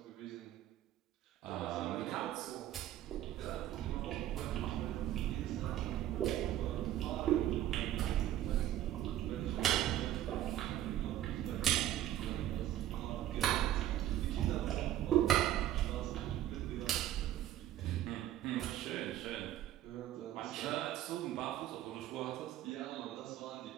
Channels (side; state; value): left; quieter; 12.7 dB